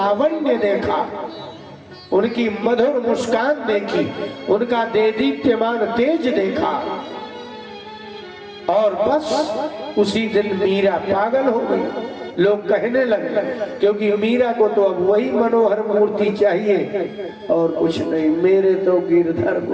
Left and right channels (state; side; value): identical; both; correlation 1.00